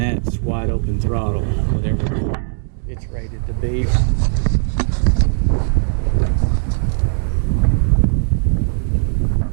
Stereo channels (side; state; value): left; silent; digital silence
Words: wide open throttle, whatever it's rated to be.